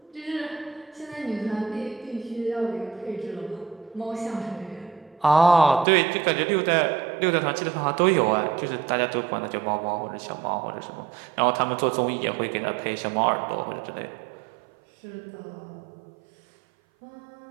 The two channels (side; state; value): left; drops out; at 5.9 s